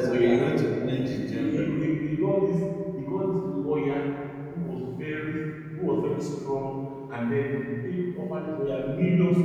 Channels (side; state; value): both; identical; correlation 1.00